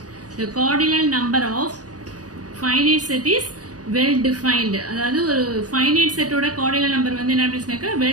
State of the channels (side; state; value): left; late; 0.68 ms